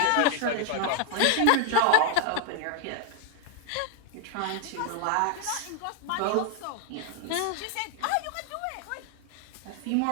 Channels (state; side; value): different; both; correlation 0.00